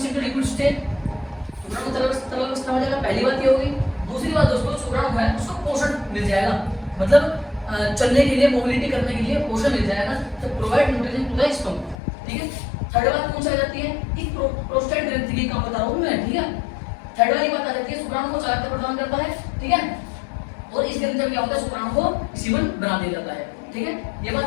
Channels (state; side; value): drops out; right; at 12.0 s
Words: into liquid state, शुक्राणु तरल अवस्था में आ जाएगा, पहली बात ये होगी। दूसरी बात दोस्तों, शुक्राणु है उसको पोषण मिल जाएगा, मतलब चलने के लिए, मोबिलिटी करने के लिए पोषण मिल जाएगा, तो provide nutrition to the sperm, ठीक है। थर्ड बात कौन सी आ जाती है कि प्रोस्टेट ग्रंथि की काम बता रहा हूं मैं, ठीक है। थर्ड वाली बात आ जाती है, शुक्राणु को चालकता प्रदान करता है, ठीक है, और इस ग्रंथि में क्या होता है, शुक्राणु को सीमन बना दिया जाता है, ठीक है। ये